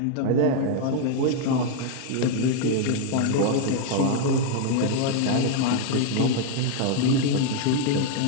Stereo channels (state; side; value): different; both; correlation 0.00